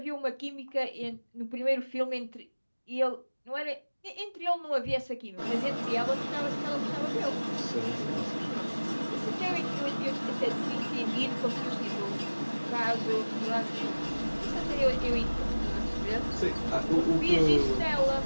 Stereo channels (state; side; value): inverted; both; correlation -1.00